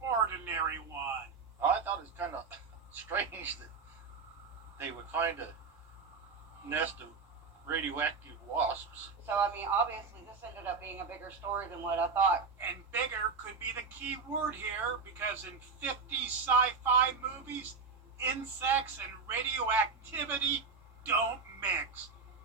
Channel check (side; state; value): left; quieter; 4.9 dB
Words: ordinary one. I thought it was kind of strange that they would find a nest of radioactive wasps. So, I mean, obviously this ended up being a bigger story than what I thought. And bigger could be the key word here, because in 50 sci-fi movies, insects and radioactivity don't mix.